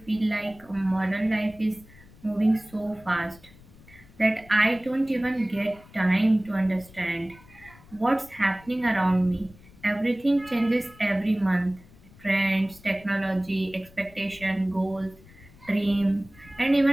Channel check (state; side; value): noise; left; rumble, 24 dB below the sound